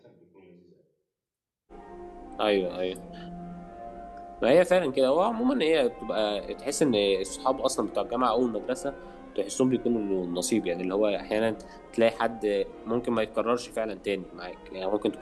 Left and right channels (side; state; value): both; identical; correlation 1.00